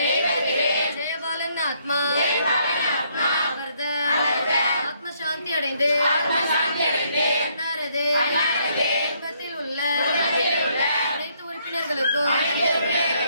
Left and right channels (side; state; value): both; inverted; correlation -0.70